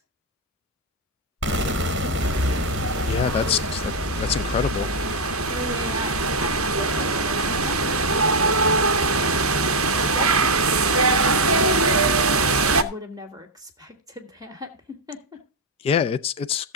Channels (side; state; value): both; normal; correlation -0.01